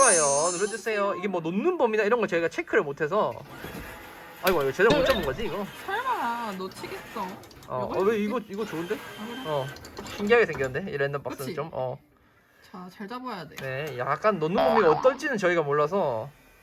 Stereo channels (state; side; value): identical; both; correlation 1.00